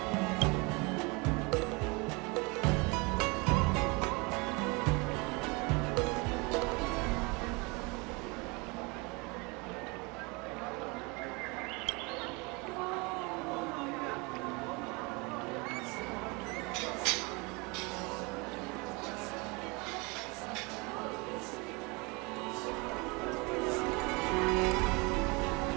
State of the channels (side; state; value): left; quieter; 27.9 dB